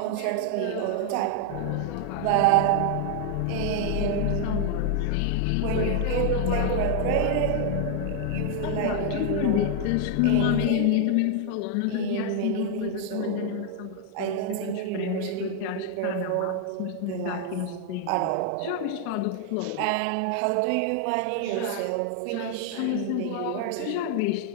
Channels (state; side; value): different; both; correlation 0.00